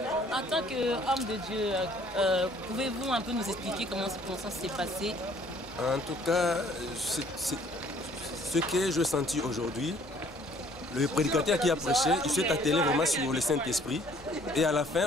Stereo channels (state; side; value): normal; both; correlation 0.58